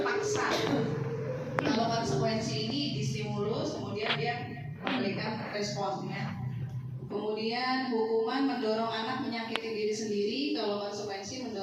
kalau konsekuensi ini distimulus, kemudian dia memberikan responnya. Kemudian hukuman mendorong anak menyakiti diri sendiri, kalau konsekuensi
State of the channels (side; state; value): both; identical; correlation 1.00